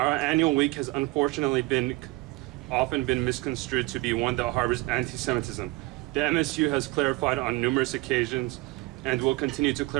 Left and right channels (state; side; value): quieter; left; 22.0 dB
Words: annual week has unfortunately often been misconstrued to be one that harbors anti-Semitism. The MSU has clarified on numerous occasions and will continue to